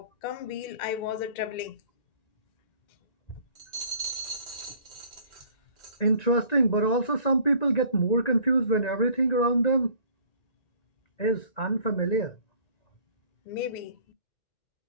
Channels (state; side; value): late; right; 1.9 ms